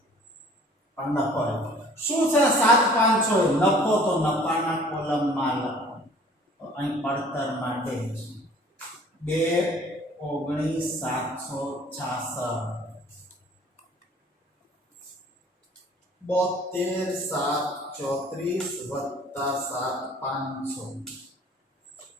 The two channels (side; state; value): both; normal; correlation 0.51